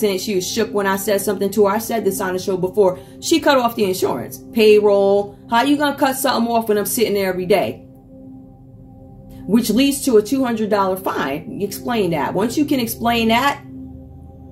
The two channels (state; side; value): identical; both; correlation 1.00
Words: she was shook when I said something to her. I said this on the show before. She cut off the insurance. Payroll. How you gonna cut something off when I'm sitting there every day? Which leads to a $200 fine. Explain that. Once you can explain that,